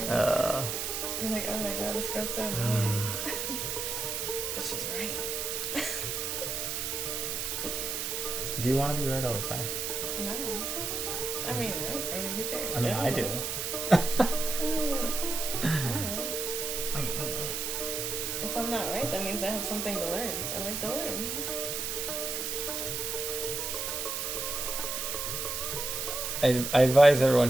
You're like, oh my god, this girl's so annoying. But she's right. Do you want to be right all the time? No. I mean, who cares? I mean, I do. If I'm not right, that means I have something to learn. I like to learn. I advise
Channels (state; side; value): noise; right; hiss, 2 dB below the sound